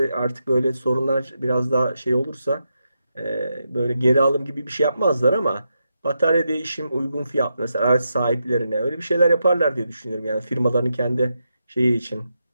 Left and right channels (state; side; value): inverted; both; correlation -0.85